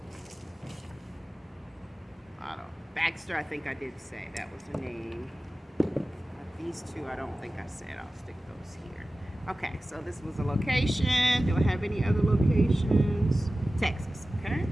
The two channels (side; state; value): both; normal; correlation 0.96